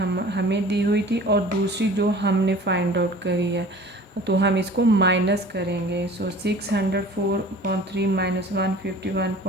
दी हुई थी और दूसरी जो हमने फाइंड आउट करी है तो हम इसको माइनस करेंगे। सो 604.3 माइनस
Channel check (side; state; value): both; normal; correlation 0.45